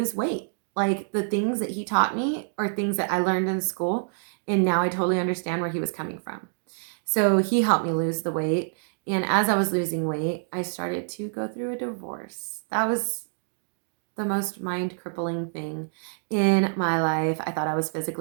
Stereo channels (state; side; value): silent; left; digital silence